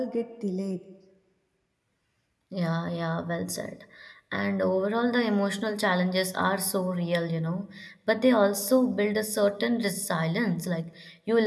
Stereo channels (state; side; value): identical; both; correlation 1.00